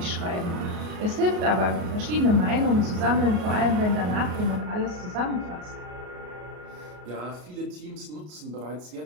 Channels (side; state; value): left; late; 33 ms